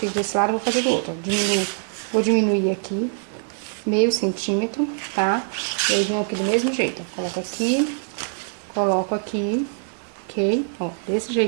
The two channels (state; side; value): silent; left; 57 dB below the other